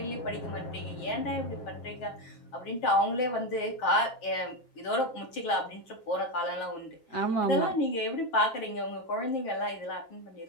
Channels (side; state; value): right; late; 8.3 ms